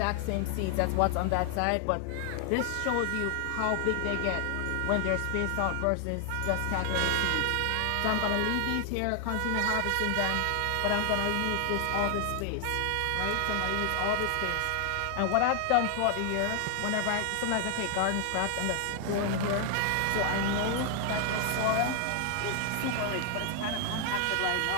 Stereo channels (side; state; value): both; different; correlation 0.00